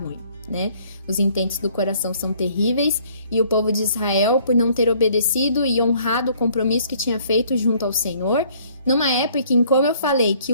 né? Os intentos do coração são terríveis e o povo de Israel, por não ter obedecido e honrado o compromisso que tinha feito junto ao Senhor, numa época em, como eu falei, que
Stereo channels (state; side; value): inverted; both; correlation -0.60